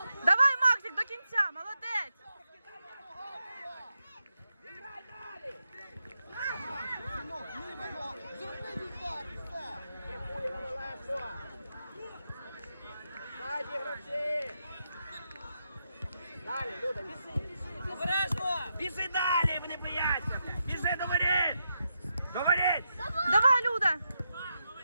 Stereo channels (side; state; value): both; inverted; correlation -0.85